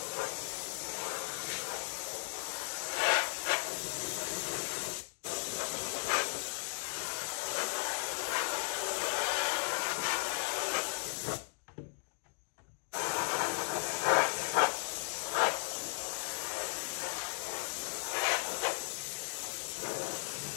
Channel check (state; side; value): silent; right; digital silence